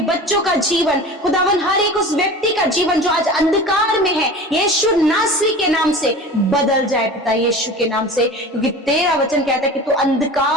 बच्चों का जीवन, खुदावन हर एक उस व्यक्ति का जीवन जो आज अंधकार में है यीशु नासरी के नाम से बदल जाए पिता, यीशु के नाम से। क्योंकि तेरा वचन कहता है कि तू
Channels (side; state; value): both; normal; correlation 0.36